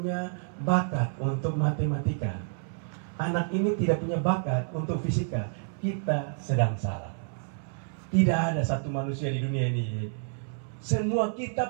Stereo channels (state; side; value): silent; left; 59 dB below the other